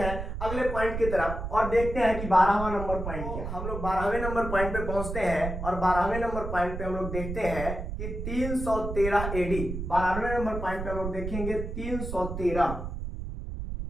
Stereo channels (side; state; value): right; noise; rumble, 5 dB below the sound